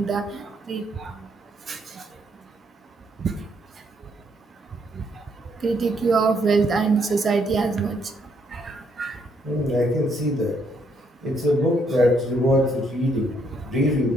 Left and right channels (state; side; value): normal; both; correlation 0.72